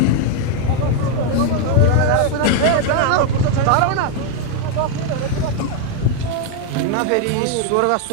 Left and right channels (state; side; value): different; both; correlation 0.01